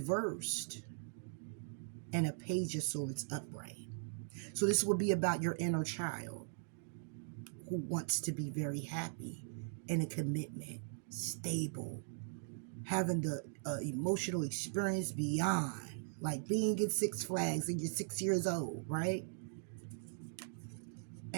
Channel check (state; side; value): silent; left; digital silence